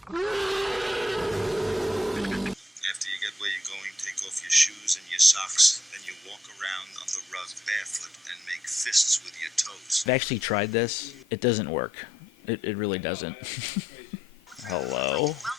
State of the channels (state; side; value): normal; both; correlation 0.75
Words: After you get where you're going, take off your shoes and your socks. Then you walk around on the rug barefoot and make fists with your toes. I've actually tried this. It doesn't work. It really doesn't. Hello?